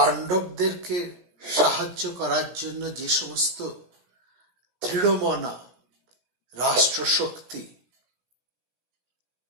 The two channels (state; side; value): late; left; 16 ms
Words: সাহায্য করার জন্য যে সমস্ত দৃঢ়মনা রাষ্ট্রশক্তি